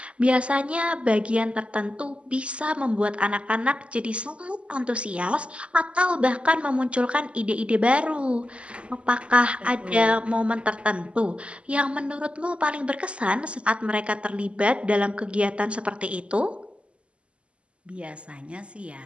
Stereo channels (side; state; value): left; late; 0.057 ms